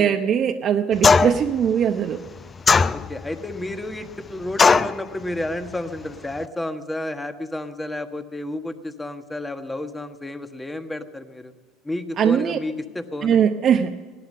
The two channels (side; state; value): both; normal; correlation 0.75